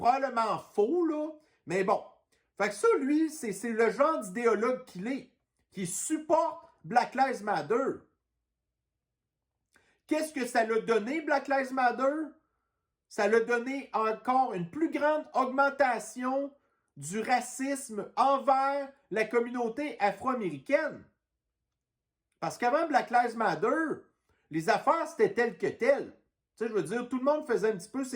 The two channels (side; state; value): both; identical; correlation 1.00